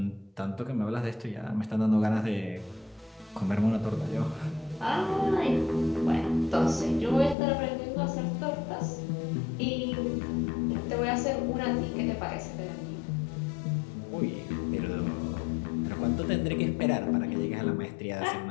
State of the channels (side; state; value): right; drops out; at 7.4 s